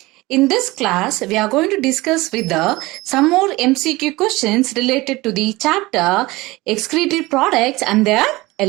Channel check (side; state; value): left; quieter; 20.8 dB